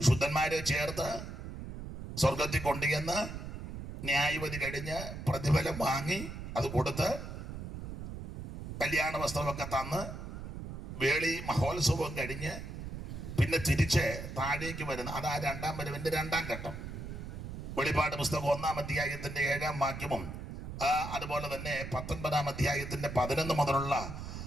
ചേർത്ത് സ്വർഗത്തിൽ കൊണ്ടുചെന്ന് ന്യായവിധി കഴിഞ്ഞ് പ്രതിഫലം വാങ്ങി അത് കൊടുത്ത് കല്യാണ വസ്ത്രമൊക്കെ തന്ന് വേളി മഹോത്സവം കഴിഞ്ഞ് പിന്നെ തിരിച്ച് താഴേക്ക് വരുന്ന അതാ 2-ാം വരവിന്റെ 2-ാം ഘട്ടം. വെളിപ്പാട് പുസ്തകം 1-ാം അധ്യായത്തിന്റെ 7-ാം വാക്യവും അതുപോലെ തന്നെ 19-ാം അധ്യായത്തിന്റെ 11 മുതലുള്ള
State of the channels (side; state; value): right; noise; rumble, 8 dB below the sound